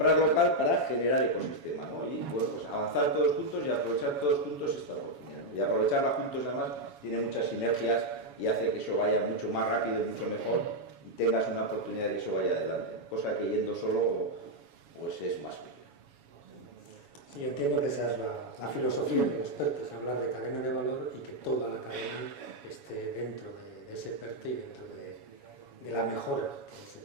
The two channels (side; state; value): left; late; 7.1 ms